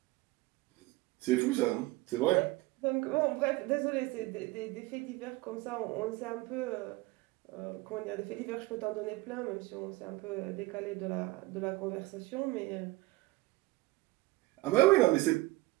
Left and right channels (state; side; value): quieter; left; 20.4 dB